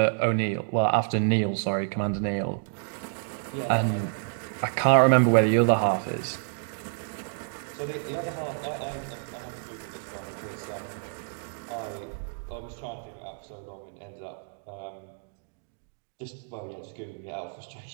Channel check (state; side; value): silent; left; digital silence